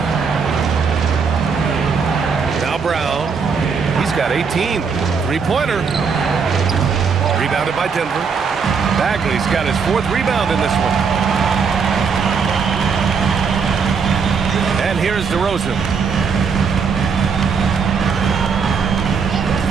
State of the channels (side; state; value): left; quieter; 5.7 dB